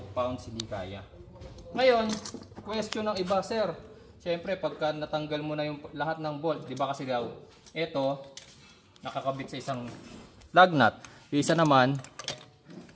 hindi kaya. Ngayon, question ng iba, sir. Siyempre, pagka natanggal mo na yung lahat ng bolt, di ba kasi daw, ito, nakakabit sa isang lug nut. Yung isa naman,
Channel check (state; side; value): identical; both; correlation 1.00